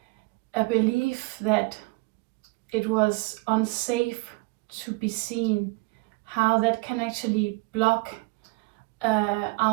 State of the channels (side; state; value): left; quieter; 25.9 dB